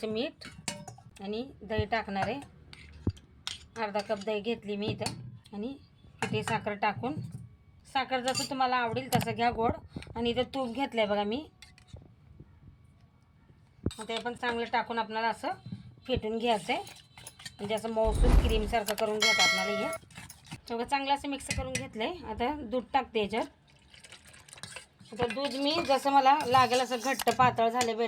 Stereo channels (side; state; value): both; identical; correlation 1.00